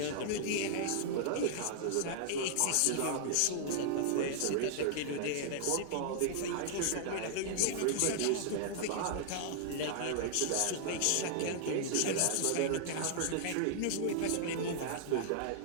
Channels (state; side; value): different; both; correlation -0.01